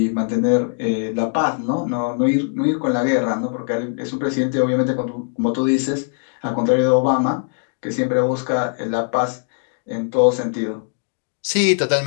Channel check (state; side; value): silent; right; 62 dB below the other